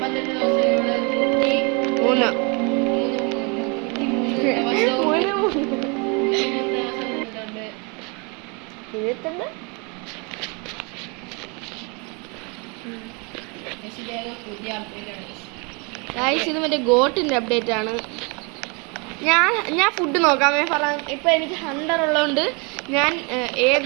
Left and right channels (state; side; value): quieter; left; 31.6 dB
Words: ഇത് മറ്റേ ഗോട്ടിൻ്റെ അപ്ഡേറ്റ് ആണ്. ഞാൻ ഫുഡ് നോക്കാമേ പറയാം. ഇപ്പം എനിക്ക് 100 ഉള്ളതുകൊണ്ട് ഞാൻ